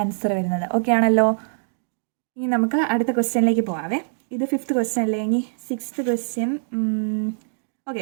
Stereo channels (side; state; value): left; silent; digital silence